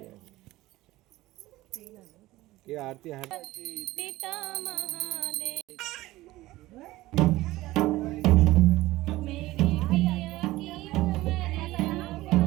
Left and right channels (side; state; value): left; quieter; 17.8 dB